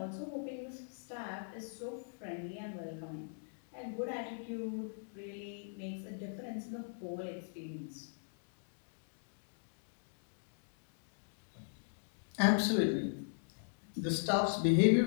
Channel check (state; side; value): silent; right; digital silence